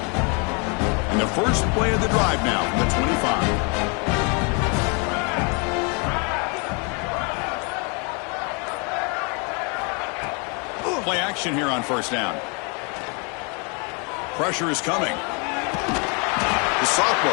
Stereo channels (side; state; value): right; quieter; 34.2 dB